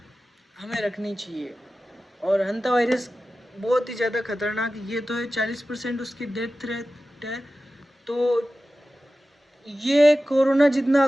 हमें रखनी चाहिए। और हंता वायरस बहुत ही ज़्यादा खतरनाक ये तो है, 40% उसकी डेथ रेट है। तो ये कोरोना जितना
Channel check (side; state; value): both; normal; correlation 0.94